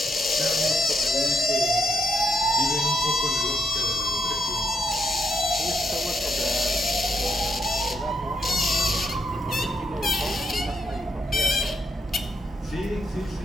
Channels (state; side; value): normal; both; correlation 0.77